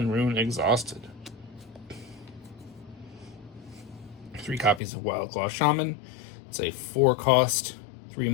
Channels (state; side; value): drops out; right; at 4.8 s